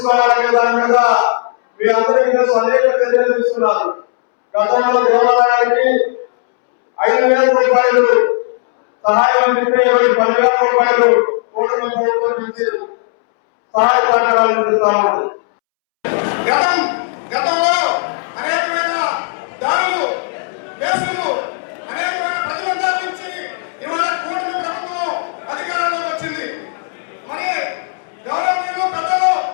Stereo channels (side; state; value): right; silent; 70 dB below the other